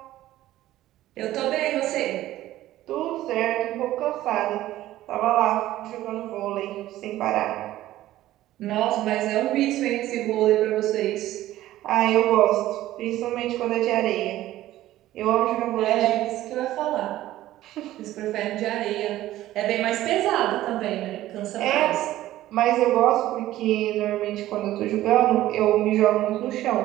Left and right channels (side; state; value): left; quieter; 14.7 dB